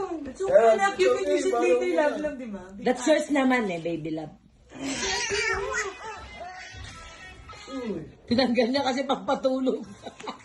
So, anak, you can use it later, love lang, di ba? That's yours naman eh, baby love. Tinanggal niya kasi pagpatulog.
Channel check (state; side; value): identical; both; correlation 1.00